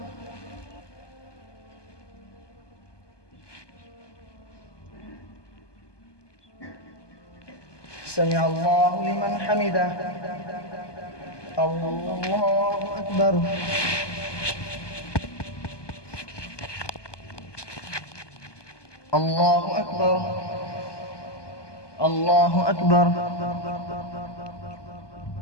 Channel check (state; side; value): late; right; 1.2 ms